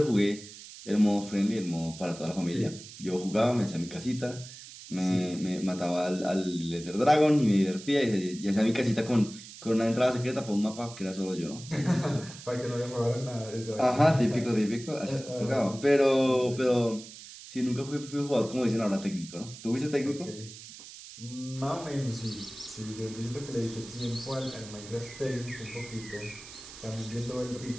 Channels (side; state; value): right; noise; hiss, 15 dB below the sound